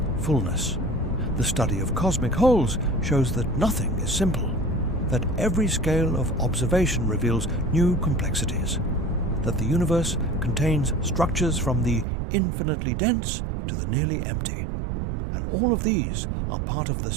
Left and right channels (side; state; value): left; drops out; at 12.1 s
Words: fullness. The study of cosmic holes shows that nothing is simple, that every scale of observation reveals new complexities, that the universe contains structures from the infinitely dense to the nearly empty. And all of these are part of the